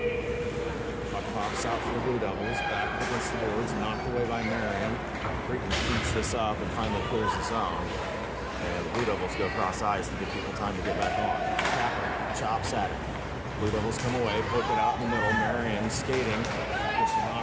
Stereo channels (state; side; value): identical; both; correlation 1.00